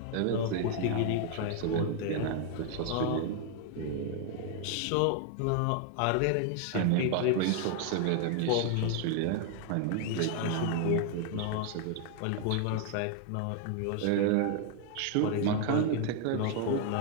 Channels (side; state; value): both; different; correlation 0.00